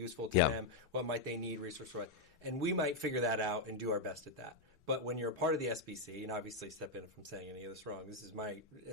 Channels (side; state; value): right; quieter; 3.0 dB